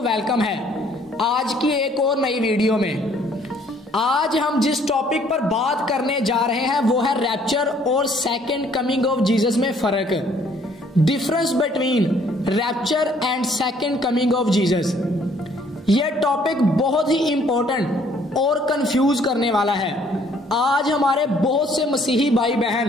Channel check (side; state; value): both; normal; correlation 0.62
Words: वेलकम है आज की एक और नई वीडियो में। आज हम जिस टॉपिक पर बात करने जा रहे हैं वो है रैप्चर और सेकंड कमिंग ऑफ जीसस में फर्क, difference between rapture and second coming of Jesus. यह टॉपिक बहुत ही इंपॉर्टेंट और कंफ्यूज करने वाला है। आज हमारे बहुत से मसीही भाई